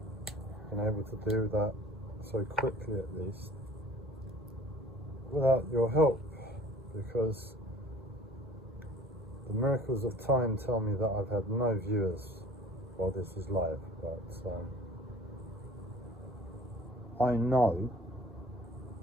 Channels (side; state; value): both; normal; correlation 0.48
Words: been able to do that so quickly at least, without your help, because the miracles of time tell me that I've had no viewers while this is live, but I know